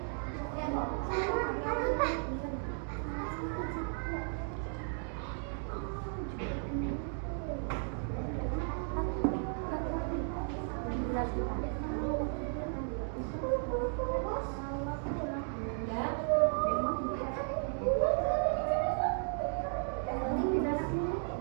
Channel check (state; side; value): silent; left; 55 dB below the other